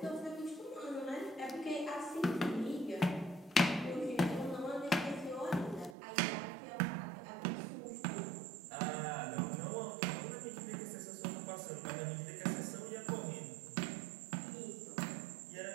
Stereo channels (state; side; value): drops out; left; at 6.0 s